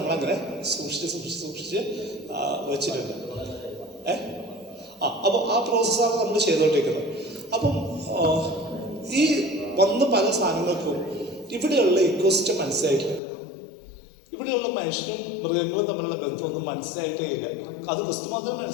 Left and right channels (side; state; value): right; drops out; at 13.2 s